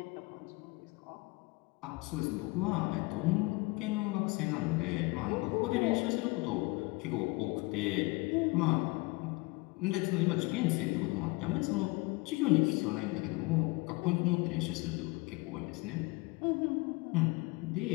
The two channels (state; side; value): quieter; right; 24.8 dB